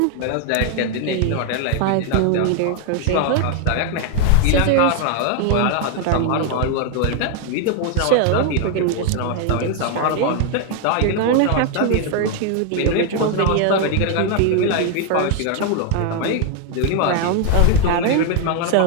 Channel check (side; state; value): both; different; correlation 0.00